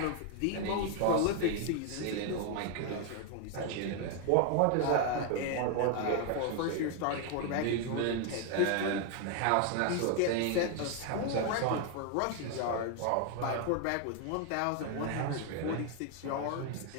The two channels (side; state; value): both; different; correlation 0.01